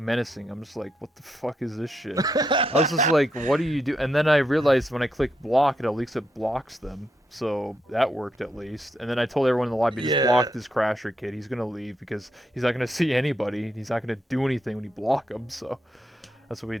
I'm just like, what the fuck is this shit? I was just like, what do you do? And then I realized when I click block, at least it blocks them. So that worked at least. And then I told everyone in the lobby, just yeah, block this crasher kid. He's gonna leave because he's not gonna see anybody. He's not gonna do anything when you block him. So that's what we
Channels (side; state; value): both; normal; correlation 0.81